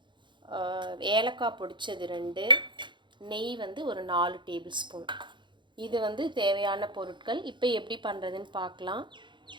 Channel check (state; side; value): late; left; 0.23 ms